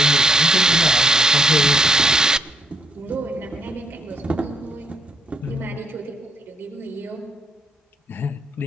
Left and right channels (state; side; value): normal; both; correlation 0.69